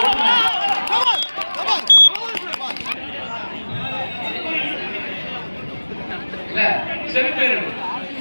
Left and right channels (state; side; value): inverted; both; correlation -1.00